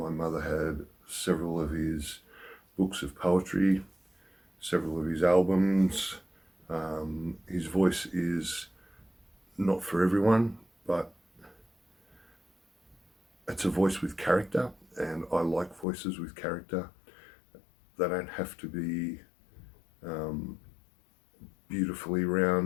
mother had several of his books of poetry, several of his albums. His voice is not for everyone, but it's a voice with character, and I like voices with character. They don't have to be beautifully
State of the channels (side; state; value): right; drops out; at 15.9 s